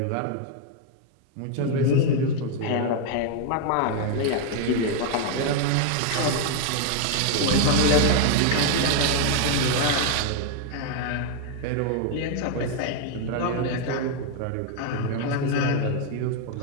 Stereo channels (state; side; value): different; both; correlation 0.00